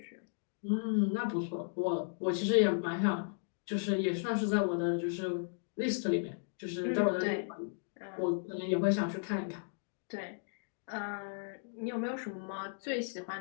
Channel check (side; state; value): right; silent; digital silence